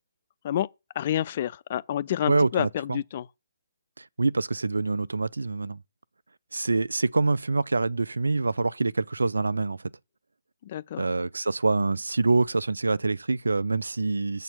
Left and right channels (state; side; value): inverted; both; correlation -0.89